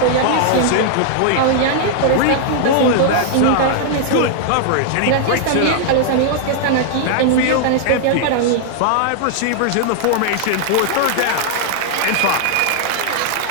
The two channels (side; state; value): both; different; correlation -0.01